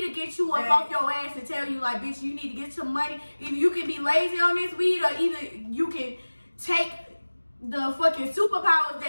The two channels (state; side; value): inverted; both; correlation -1.00